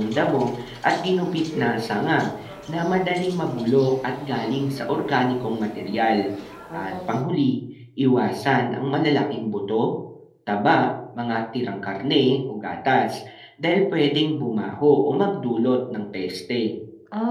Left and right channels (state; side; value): identical; both; correlation 1.00